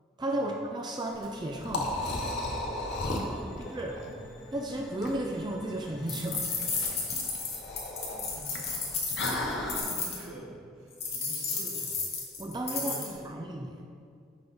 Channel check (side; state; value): both; normal; correlation 0.41